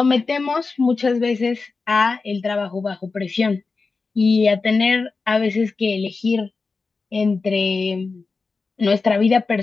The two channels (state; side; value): quieter; right; 4.2 dB